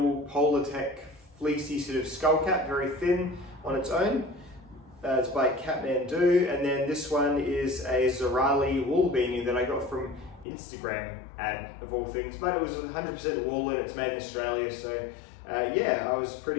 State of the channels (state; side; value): drops out; right; at 10.5 s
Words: Polartec fleecy sort of skull cap, very thin on its own. It's by Kathmandu, and then this one is a Zerali wool beanie that I got from Instagram ad of all things, but it was 100% wool and it's made in Australia, so yeah, I was